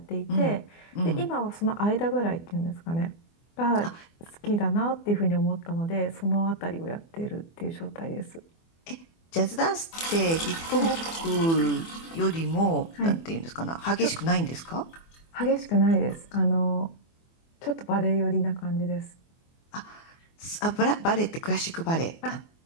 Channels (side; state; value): right; late; 24 ms